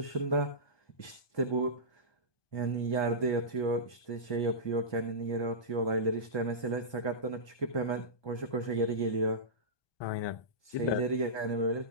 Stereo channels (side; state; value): right; late; 1.2 ms